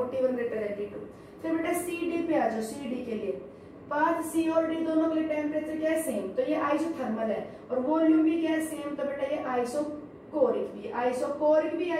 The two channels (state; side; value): identical; both; correlation 1.00